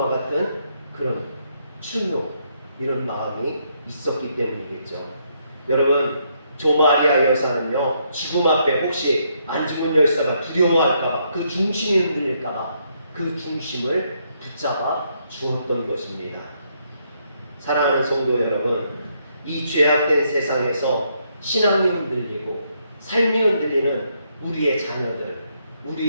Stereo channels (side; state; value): both; inverted; correlation -0.75